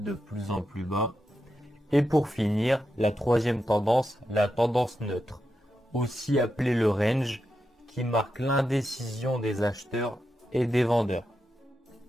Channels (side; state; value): both; normal; correlation 0.87